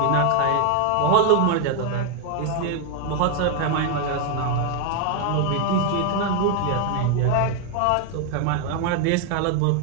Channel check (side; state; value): both; different; correlation 0.01